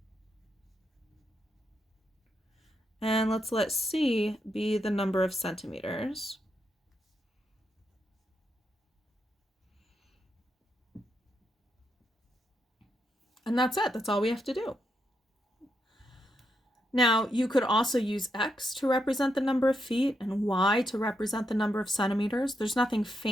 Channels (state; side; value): normal; both; correlation 0.81